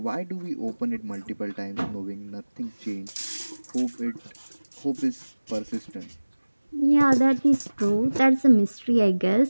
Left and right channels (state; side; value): inverted; both; correlation -1.00